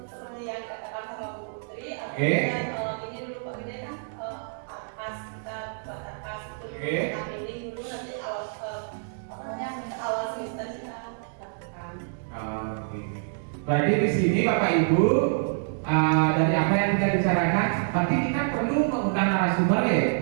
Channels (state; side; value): silent; left; digital silence